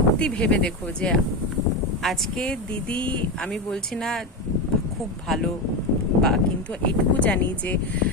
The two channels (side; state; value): both; normal; correlation 0.15